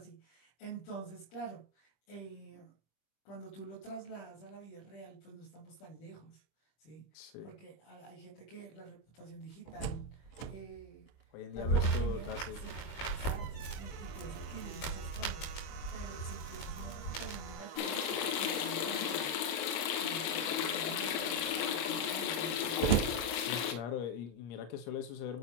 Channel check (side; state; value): right; late; 26 ms